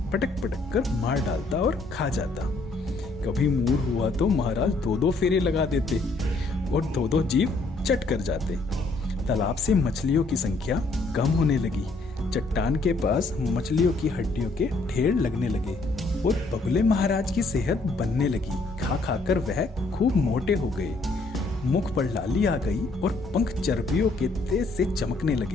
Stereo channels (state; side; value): quieter; right; 3.3 dB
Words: पटक पटक कर मार डालता और खा जाता। कभी मूड हुआ तो महाराज दो दो फेरे लगा देते और दो दो जीव चट कर जाते। तालाब से मछलियों की संख्या कम होने लगी। चट्टान के पास मछलियों की हड्डियों के ढेर लगने लगे और बगुले महाराज की सेहत बनने लगी। खा खाकर वह खूब मोटे हो गए। मुख पर लाली आ गई और पंख चर्बियों के तेज से चमकने